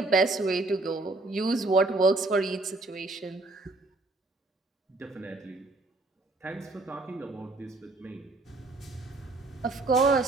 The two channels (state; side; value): quieter; left; 3.1 dB